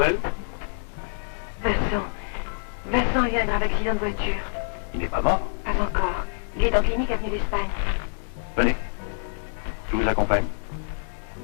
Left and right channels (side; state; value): right; silent; digital silence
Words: Vincent vient d'un accident de voiture. Il n'est pas mort. Pas encore. Il est en clinique avenue d'Espagne. Venez. Je vous accompagne.